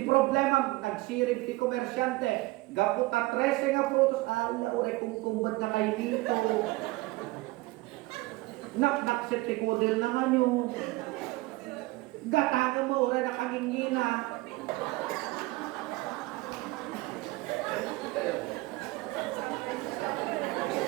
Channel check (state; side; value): quieter; left; 21.4 dB